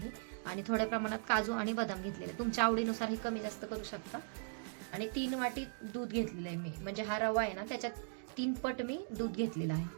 आणि थोड्या प्रमाणात काजू आणि बदाम घेतलेले. तुमच्या आवडीनुसार हे कमी जास्त करू शकता. आणि 3 वाटी दूध घेतलेलं आहे मी, म्हणजे हा रवा आहे ना त्याच्यात 3 पट मी दूध घेतलेलं आहे.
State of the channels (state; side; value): silent; left; digital silence